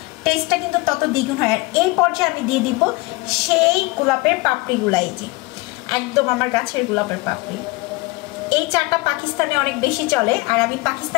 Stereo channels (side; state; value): right; quieter; 23.1 dB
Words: টেস্টটা কিন্তু তত দ্বিগুণ হয়। আর এই পর্যায়ে আমি দিয়ে দিব সেই গোলাপের পাপড়িগুলা, এই যে একদম আমার গাছের গোলাপের পাপড়ি। এই চাটা পাকিস্তানে অনেক বেশি চলে, আর আমি